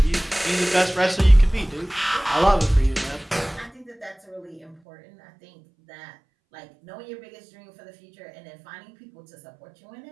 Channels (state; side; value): drops out; left; at 4.8 s